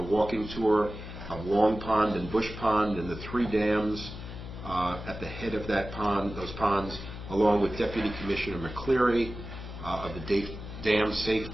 walking tour of Long Pond and Bush Pond and the 3 dams at the head of those ponds, along with Deputy Commissioner McCleary of the Dam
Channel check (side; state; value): left; noise; hum, 11 dB below the sound